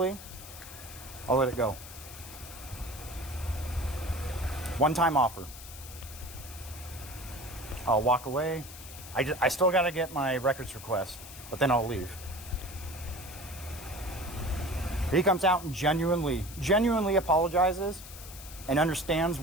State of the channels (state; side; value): noise; left; hiss, 14 dB below the sound